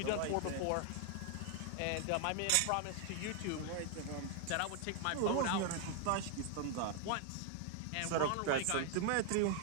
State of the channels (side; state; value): both; different; correlation 0.00